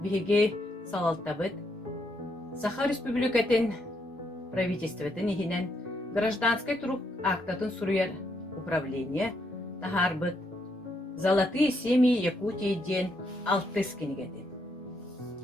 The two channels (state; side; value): normal; both; correlation 0.76